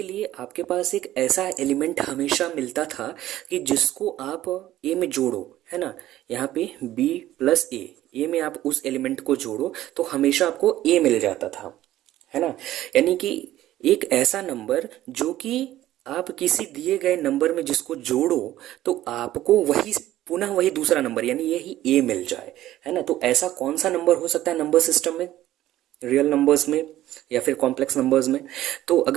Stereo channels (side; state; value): left; quieter; 14.1 dB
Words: लिए आपके पास एक ऐसा एलिमेंट हमेशा मिलता था कि जिसको आप ए में जोड़ो, है ना, यहाँ पे बी प्लस ए में आप उस एलिमेंट को जोड़ो तो हमेशा आपको ए मिल जाता था, है ना। यानी कि एक ऐसा नंबर जो कि आप किसी दिए गए नंबर में जिसको जोड़ो तो आपको वही पुनः वही दूसरा नंबर यानी यही ए मिल जाए, है ना। तो ऐसा कौन सा नंबर हो सकता है नंबर सिस्टम में, रियल नंबर्स में या फिर कॉम्प्लेक्स नंबर्स में? तो